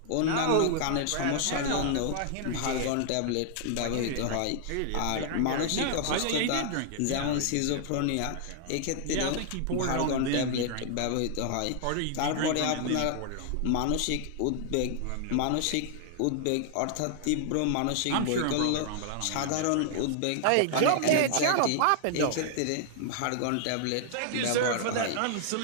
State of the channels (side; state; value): both; different; correlation 0.00